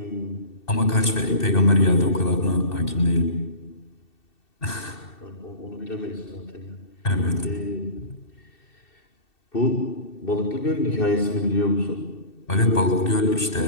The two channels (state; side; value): late; right; 2.7 ms